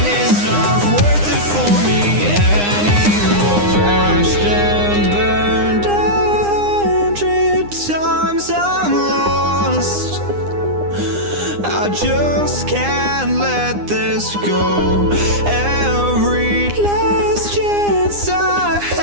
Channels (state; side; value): late; left; 9.8 ms